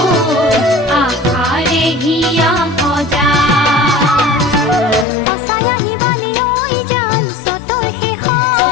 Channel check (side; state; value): right; drops out; at 5.1 s